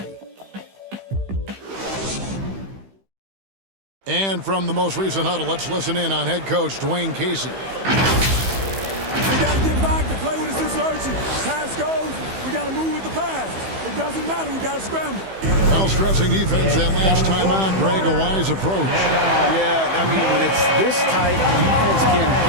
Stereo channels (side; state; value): left; late; 15 ms